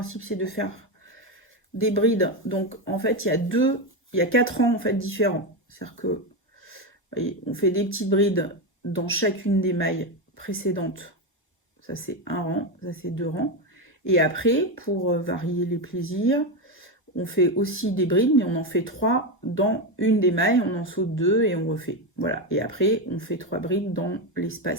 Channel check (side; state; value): both; normal; correlation 0.12